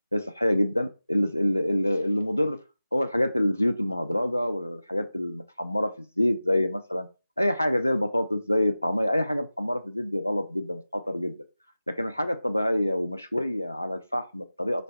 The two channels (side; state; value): both; inverted; correlation -0.96